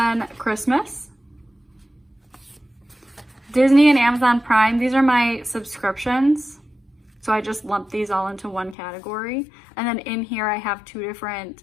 Christmas. Disney and Amazon Prime, these are my subscriptions. So I just lump these all into one category. And then in here I have two different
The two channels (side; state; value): right; drops out; at 8.8 s